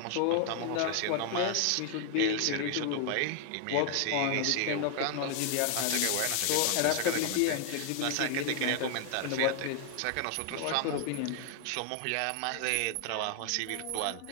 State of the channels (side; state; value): both; different; correlation 0.00